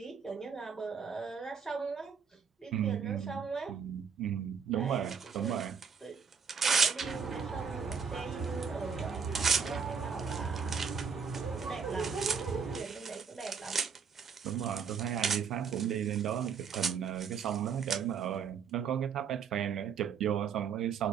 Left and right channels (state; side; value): quieter; left; 6.3 dB